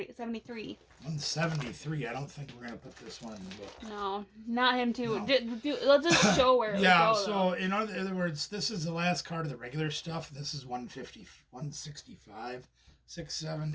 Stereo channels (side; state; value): both; identical; correlation 1.00